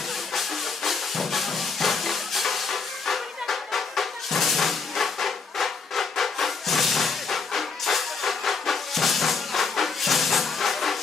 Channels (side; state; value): right; quieter; 4.9 dB